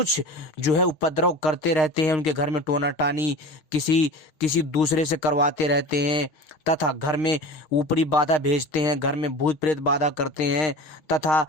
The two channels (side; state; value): right; late; 6.5 ms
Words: जो है उपद्रव करते रहते हैं। उनके घर में टोना टानी किसी दूसरे से करवाते रहते हैं, तथा घर में ऊपरी बाधा भेजते हैं, घर में भूत प्रेत बाधा करते हैं, तथा